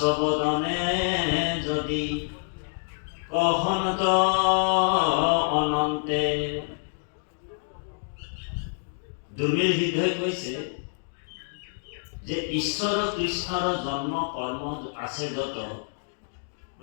বদনে যদি কহন্ত অনন্তে। দুৰ্মিল সিদ্ধই কৈছে যে ঈশ্বৰ কৃষ্ণৰ জন্ম কৰ্ম আছে যত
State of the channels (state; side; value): silent; right; digital silence